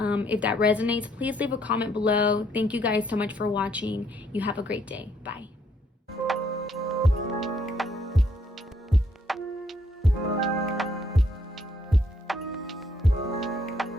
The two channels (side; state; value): both; normal; correlation 0.69